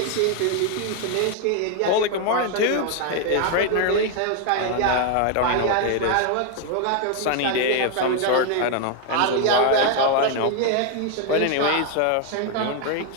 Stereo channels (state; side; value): different; both; correlation 0.00